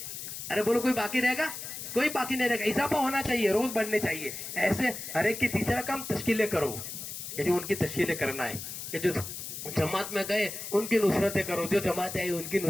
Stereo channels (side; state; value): left; noise; hiss, 8 dB below the sound